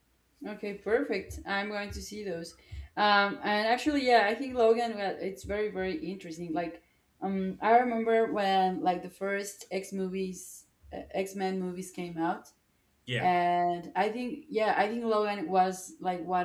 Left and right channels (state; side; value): identical; both; correlation 1.00